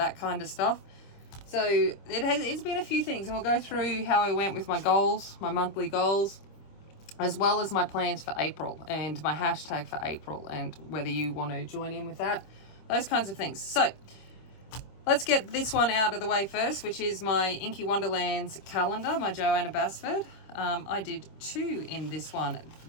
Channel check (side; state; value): right; late; 25 ms